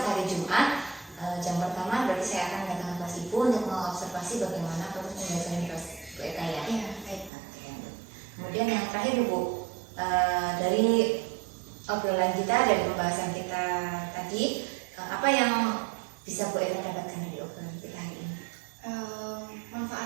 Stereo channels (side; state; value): left; drops out; at 7.3 s